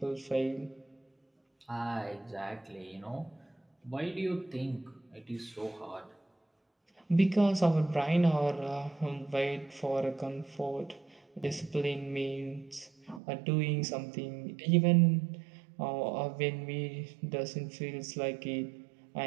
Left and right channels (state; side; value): drops out; left; at 13.2 s